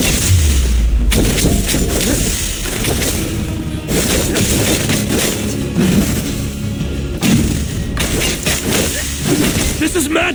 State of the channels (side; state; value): both; identical; correlation 1.00